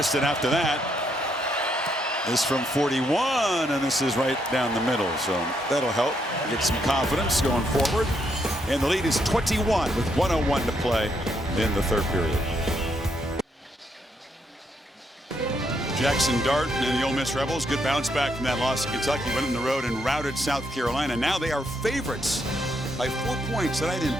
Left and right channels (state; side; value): normal; both; correlation 0.76